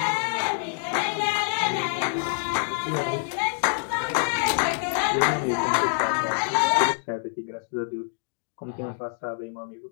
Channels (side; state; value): right; silent; digital silence